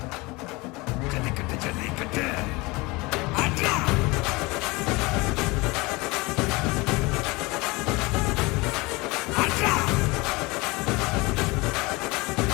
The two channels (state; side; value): quieter; right; 24.1 dB